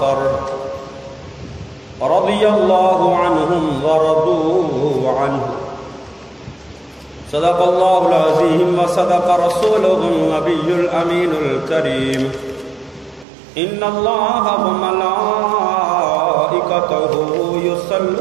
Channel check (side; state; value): left; drops out; at 13.2 s